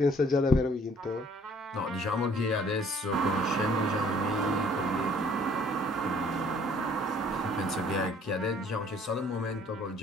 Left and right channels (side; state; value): both; normal; correlation 0.58